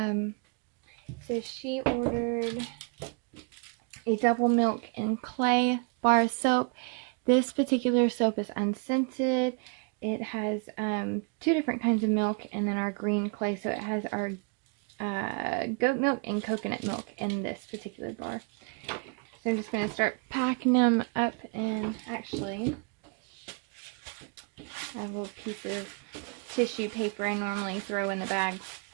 she ordered a double milk and clay bar of soap. This particular soap is unscented. It has 2 different kinds of milk and then our green clay. So it has our goat milk and coconut milk in this particular bar. So I'm just going to start packing them up, and actually I have a little piece of tissue paper I normally throw in the bag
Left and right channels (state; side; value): quieter; left; 33.8 dB